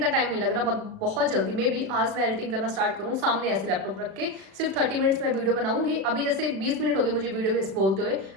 टाइम नहीं लग रहा, बहुत जल्दी में भी आज मैं एडिटिंग करना स्टार्ट करूँ, सामने ऐसे लैपटॉप रख के सिर्फ 30 मिनट्स में वीडियो बनाऊंगी। अभी जैसे 20 मिनट हो गए मुझे वीडियो में बोलते हुए,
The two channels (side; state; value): left; late; 36 ms